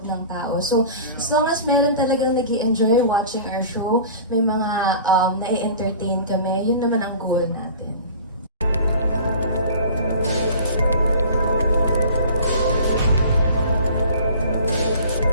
ng tao. So, as long as meron talagang nag-i-enjoy watching our show, may mga na-entertain kami, yun naman ang goal natin.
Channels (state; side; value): inverted; both; correlation -0.42